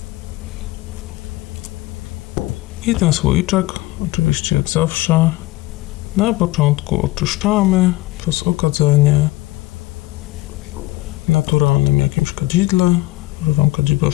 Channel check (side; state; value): right; quieter; 19.2 dB